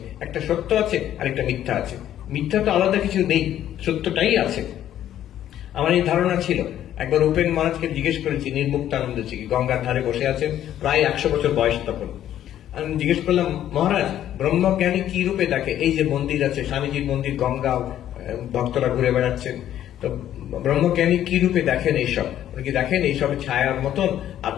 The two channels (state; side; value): quieter; right; 11.5 dB